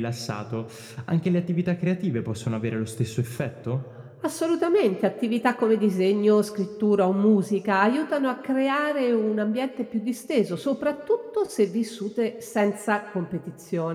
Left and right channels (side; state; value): both; identical; correlation 1.00